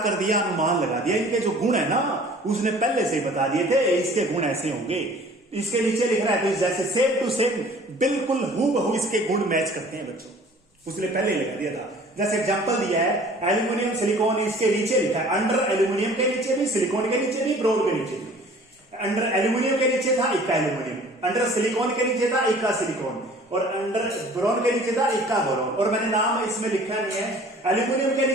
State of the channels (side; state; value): both; normal; correlation 0.49